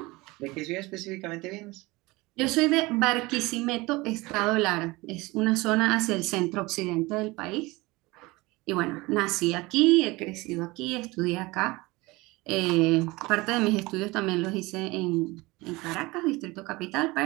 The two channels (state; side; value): quieter; left; 22.3 dB